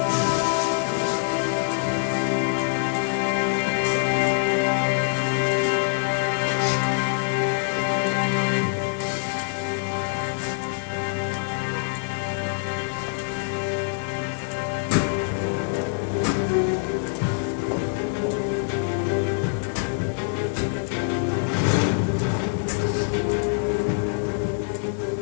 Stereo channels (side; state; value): right; silent; 61 dB below the other